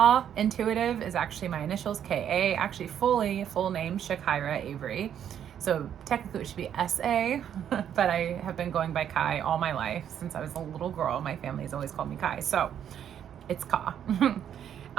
Intuitive is actually my initials, KA, actually full name, Shakira Avery. So technically it should be SA, but I have been going by Kai all my life. Since I was a little girl, my family's always called me Kai. So it's Ka.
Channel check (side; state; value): left; quieter; 9.4 dB